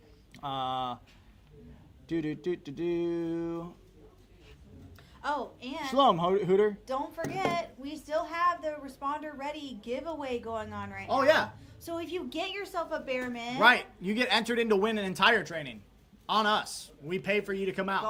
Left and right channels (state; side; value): identical; both; correlation 1.00